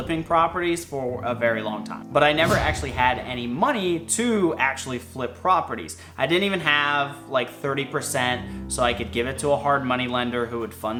properties for a very long time, but I never actually had any money to actually flip properties. I didn't even have like 30% so I could give it to a hard money lender who would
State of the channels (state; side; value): identical; both; correlation 1.00